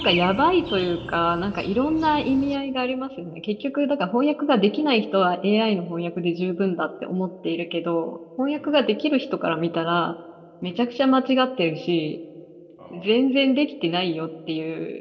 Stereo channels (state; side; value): identical; both; correlation 1.00